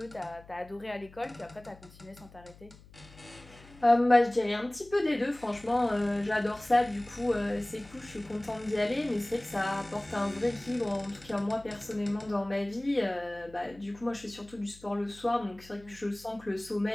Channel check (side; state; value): left; noise; hum, 22 dB below the sound